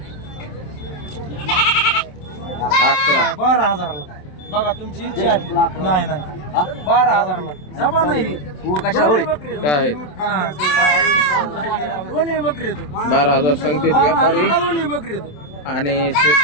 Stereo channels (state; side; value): late; right; 27 ms